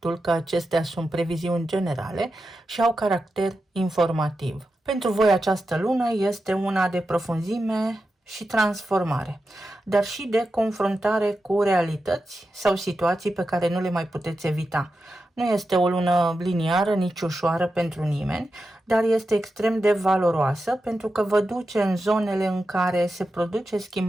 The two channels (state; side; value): normal; both; correlation 0.90